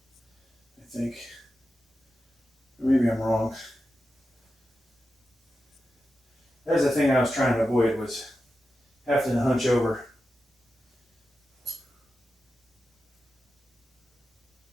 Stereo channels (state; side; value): normal; both; correlation 0.91